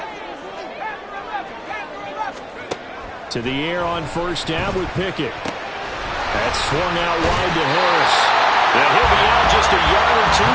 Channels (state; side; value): identical; both; correlation 1.00